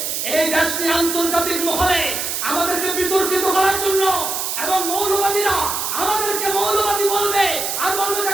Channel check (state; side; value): noise; right; hiss, 2 dB below the sound